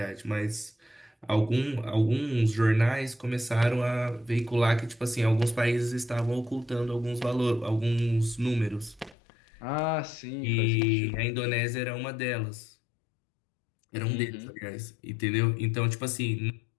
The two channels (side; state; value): right; drops out; at 9.2 s